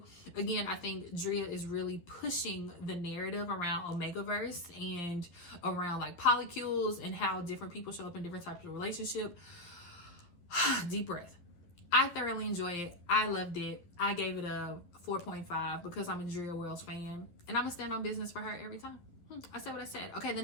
Again, I think Dria is really pushing the narrative around Omegaverse and around like polycules and how different people show up in different types of relationship. Deep breath. I thoroughly enjoy it. I loved it. I gave it a 4.5 because I'm a Dria Wells fan and I'm gonna stand on business for her every time. I said what I said. Okay, the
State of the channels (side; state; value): right; late; 11 ms